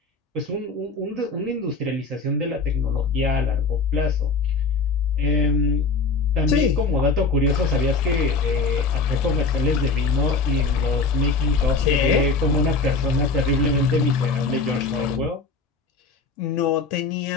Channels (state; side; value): quieter; right; 4.1 dB